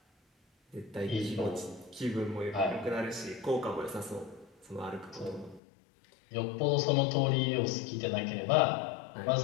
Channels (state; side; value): drops out; right; at 5.6 s